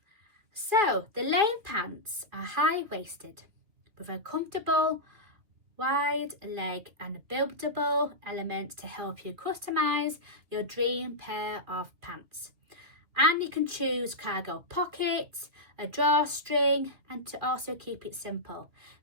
So the Lane Pants are high-waisted with a comfortable wide leg and buildable elements to help you customize your dream pair of pants. And you can choose cargo pockets, a drawstring, and to also keep it simple,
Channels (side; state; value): left; late; 2.7 ms